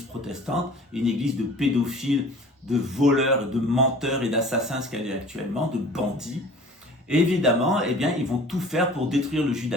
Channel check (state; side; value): normal; both; correlation 0.45